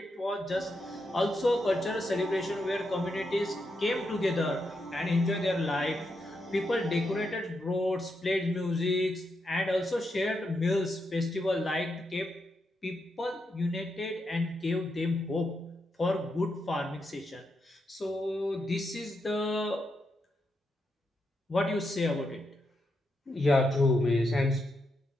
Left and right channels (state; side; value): normal; both; correlation 0.83